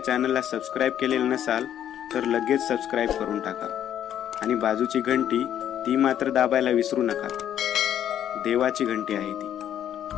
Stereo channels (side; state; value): right; quieter; 10.4 dB